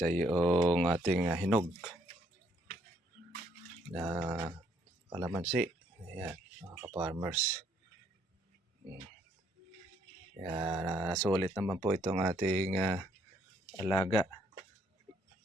yung ating hinog na kalamansi. Ayan, mga ka-farmers. Kaya nasulit naman po itong ating alaga.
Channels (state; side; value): normal; both; correlation 0.68